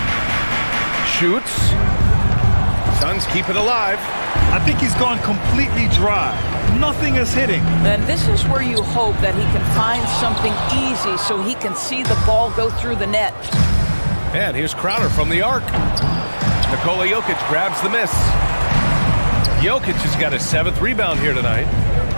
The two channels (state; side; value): inverted; both; correlation -1.00